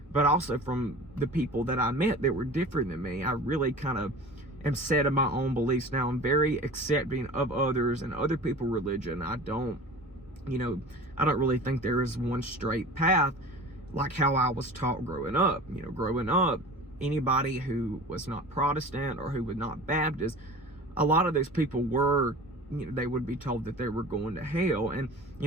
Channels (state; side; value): normal; both; correlation 0.38